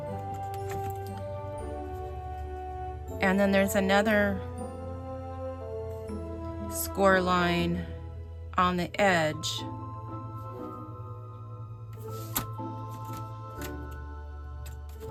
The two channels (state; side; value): identical; both; correlation 1.00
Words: and then there's another score line on the edge.